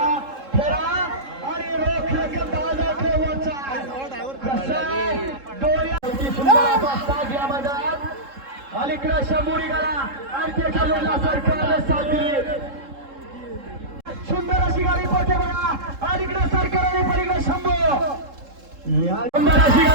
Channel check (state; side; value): late; left; 3.7 ms